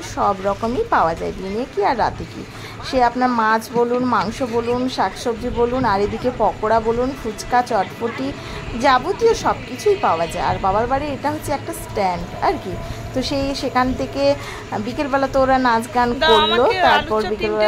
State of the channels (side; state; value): both; identical; correlation 1.00